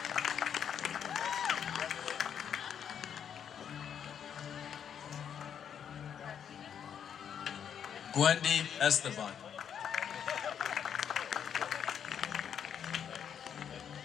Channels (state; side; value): quieter; right; 8.3 dB